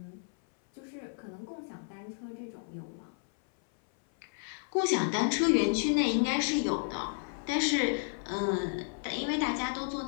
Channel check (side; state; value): right; silent; 56 dB below the other